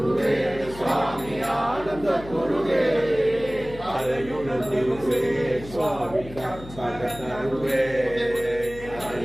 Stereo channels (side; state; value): left; noise; hum, 15 dB below the sound